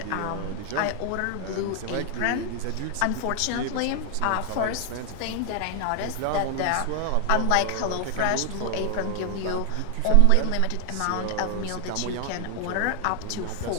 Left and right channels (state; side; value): different; both; correlation 0.00